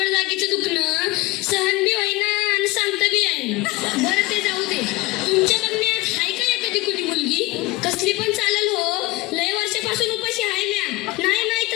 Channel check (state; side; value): quieter; right; 20.7 dB